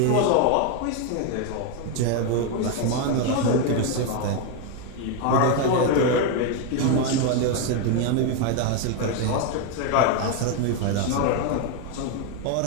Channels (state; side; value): different; both; correlation 0.01